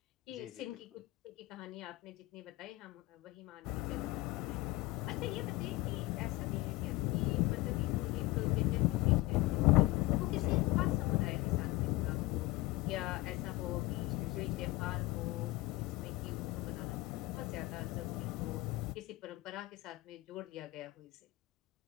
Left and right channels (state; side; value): quieter; right; 19.6 dB